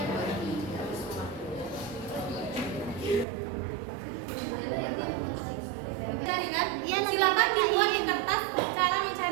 Cari kan? Silakan dibuat di kertas cara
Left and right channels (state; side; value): drops out; left; at 3.2 s